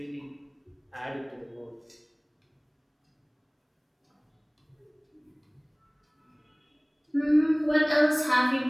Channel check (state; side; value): identical; both; correlation 1.00